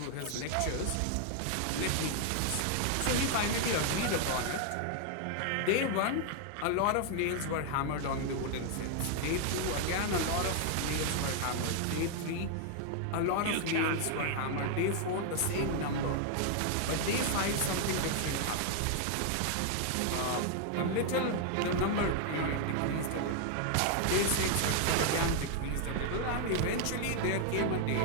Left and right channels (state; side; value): different; both; correlation 0.00